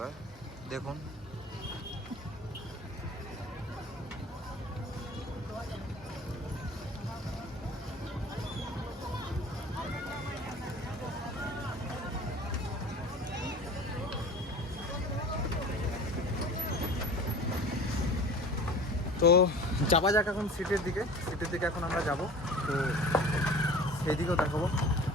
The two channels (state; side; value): normal; both; correlation 0.41